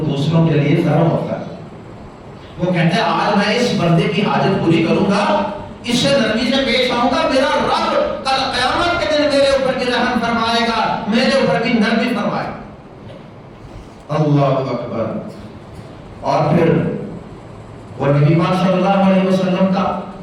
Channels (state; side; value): identical; both; correlation 1.00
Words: دوسروں کے لیے نرم ہوتا ہے. وہ کہتے ہیں آج میں اس بندے کی حاجت پوری کروں گا، اس سے نرمی سے پیش آؤں گا، میرا رب کل قیامت کے دن میرے اوپر بھی رحم فرمائے گا، میرے اوپر بھی نرمی فرمائے گا. اللہ اکبر. اور پھر وہ نبی پاک صلی اللہ علیہ وسلم کا